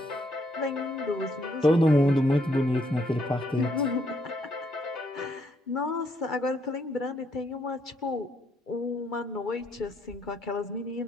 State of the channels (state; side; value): normal; both; correlation 0.73